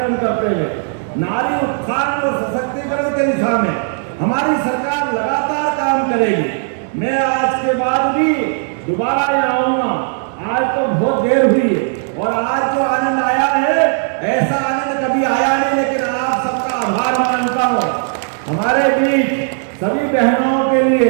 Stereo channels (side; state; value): left; silent; 69 dB below the other